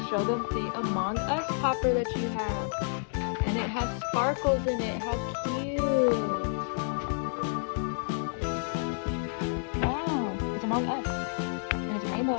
show them the Among Us popper that you have. And it has sparkles in it. How cute. Among Us. And it's rainbow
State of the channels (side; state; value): right; silent; digital silence